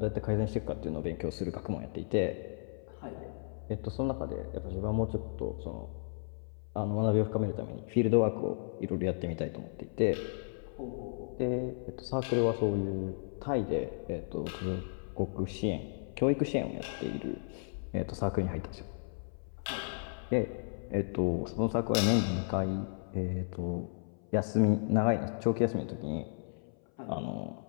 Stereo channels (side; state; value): right; silent; 55 dB below the other